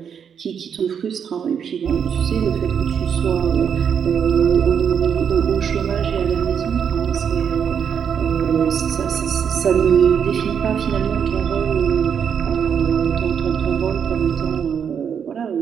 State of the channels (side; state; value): left; quieter; 7.6 dB